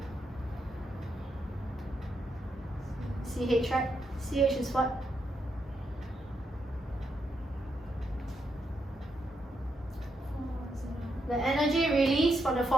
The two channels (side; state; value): both; normal; correlation 0.81